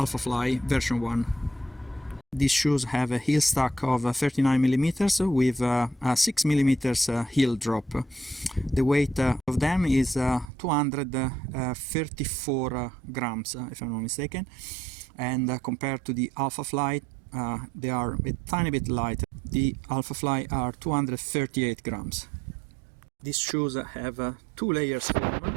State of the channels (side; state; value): left; drops out; at 10.5 s